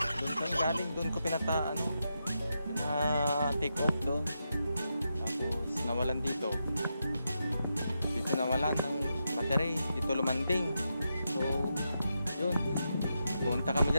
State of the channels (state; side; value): inverted; both; correlation -0.85